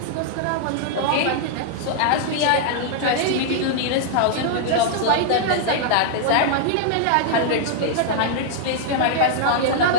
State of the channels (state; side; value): different; both; correlation -0.01